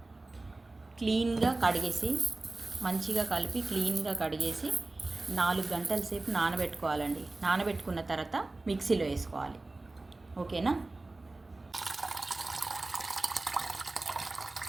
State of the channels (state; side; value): quieter; left; 3.1 dB